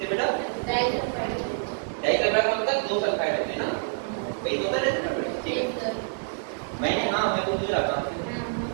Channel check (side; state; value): left; silent; 58 dB below the other